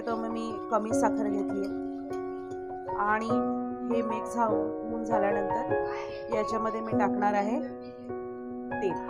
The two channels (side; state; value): both; identical; correlation 1.00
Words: तर मग मी कमी साखर घेतली आहे. आणि हे मिक्स होऊन झाल्यानंतर याच्यामध्ये मी टाकणार आहे तेल.